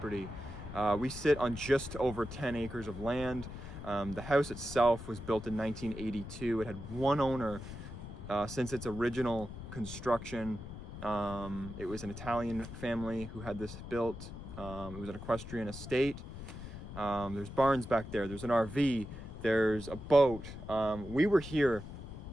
We sit on just over 10 acres of land. The house itself was built in 1982. It had one owner since its original construction. It was an Italian family who had this built. It was an equestrian estate. There's barns back there. There's an RV. There's a boat. We were here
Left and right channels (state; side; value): noise; left; rumble, 11 dB below the sound